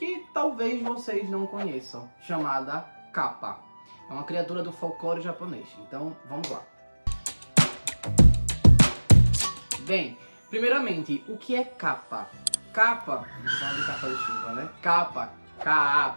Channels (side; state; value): both; inverted; correlation -1.00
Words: talvez vocês não conheçam, chamada Kappa. É uma criatura do folclore japonês, então vamos lá. Bem, primeiramente, o que é Kappa? Kappa, vamos falar de capa de chuva, né? Kappa,